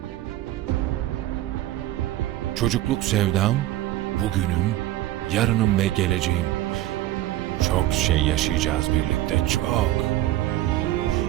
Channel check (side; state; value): left; quieter; 15.1 dB